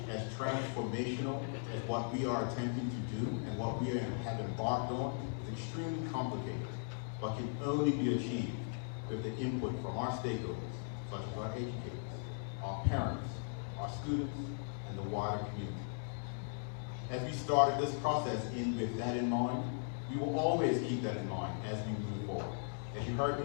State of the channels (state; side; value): silent; right; digital silence